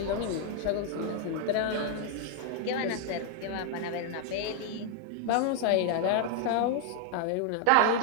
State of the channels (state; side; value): different; both; correlation 0.00